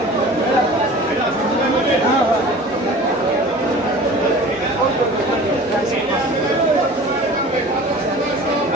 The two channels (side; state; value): both; normal; correlation 0.41